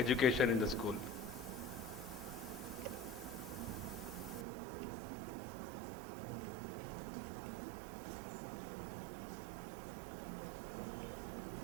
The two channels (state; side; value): drops out; left; at 4.5 s